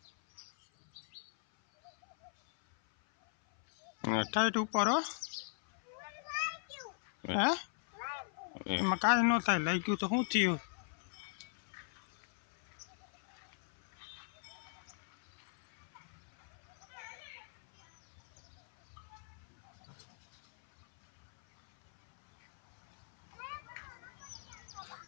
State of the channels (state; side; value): silent; right; 52 dB below the other